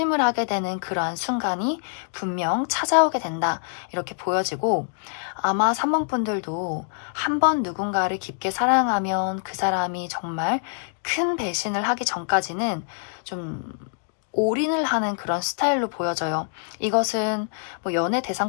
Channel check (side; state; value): right; silent; digital silence